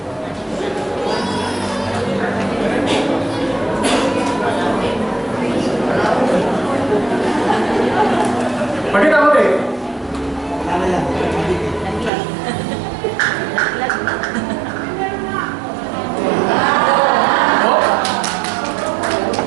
Pakita mo din.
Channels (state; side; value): drops out; left; at 12.1 s